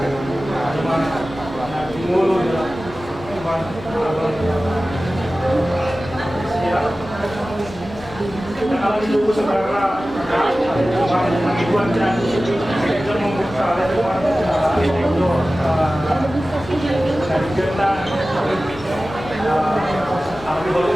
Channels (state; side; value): noise; left; hum, 18 dB below the sound